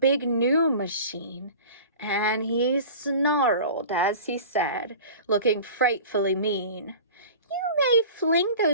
new machine, and he snarled as he said, looking frightfully mean, "You may fling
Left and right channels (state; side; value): inverted; both; correlation -0.39